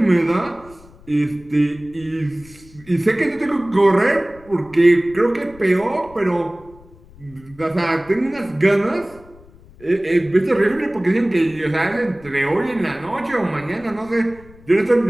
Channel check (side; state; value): left; noise; rumble, 24 dB below the sound